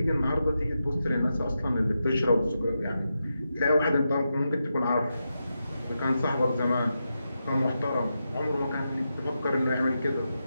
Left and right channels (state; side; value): inverted; both; correlation -0.87